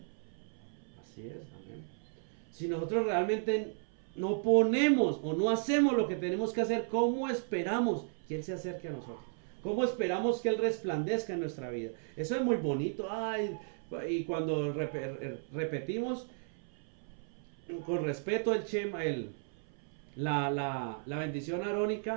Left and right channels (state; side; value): silent; left; 55 dB below the other